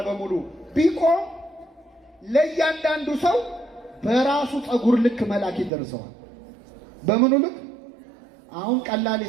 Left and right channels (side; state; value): left; drops out; at 5.7 s